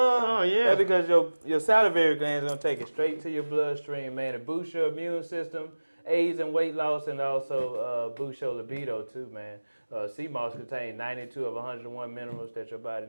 Oh, yeah. That's because your salivary glands going to take it straight to your bloodstream, man. It boosts your immune system, aids in weight loss, and also boosts your libido too, man. Seamoss contains 92 of 101 minerals that your body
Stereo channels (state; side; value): inverted; both; correlation -1.00